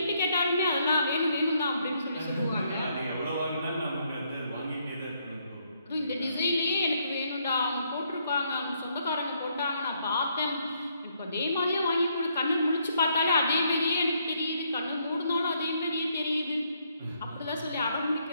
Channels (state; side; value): inverted; both; correlation -0.72